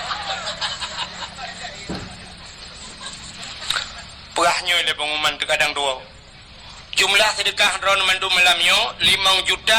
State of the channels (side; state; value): both; identical; correlation 1.00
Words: sedekahnya le pengumuman terkadang dua. Jumlah sedekah ron mandu malamnya 5